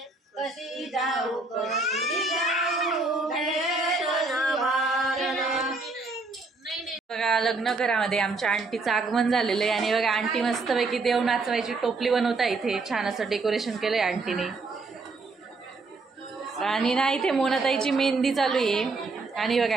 बघा लग्न घरामध्ये आमच्या आंटीचं आगमन झालेलं आहे आणि बघा आंटी मस्तपैकी देव नाचवायची टोपली बनवता इथे छान असं डेकोरेशन केलंय आंटीने। आणि ना इथे मोनाताईची मेहंदी चालू आहे आणि बघा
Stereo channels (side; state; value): left; quieter; 3.7 dB